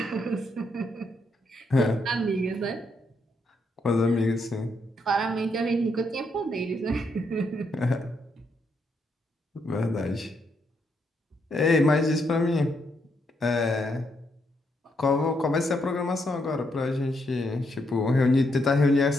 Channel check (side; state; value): both; normal; correlation 0.77